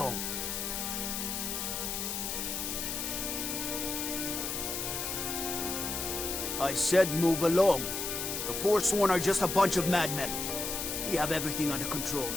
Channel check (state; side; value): noise; left; hiss, 3 dB below the sound